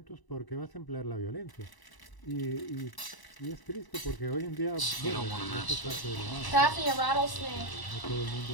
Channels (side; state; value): right; late; 1.0 ms